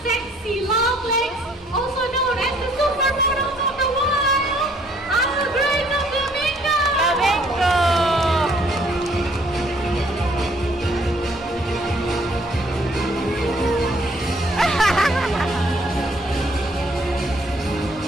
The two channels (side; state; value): both; normal; correlation 0.62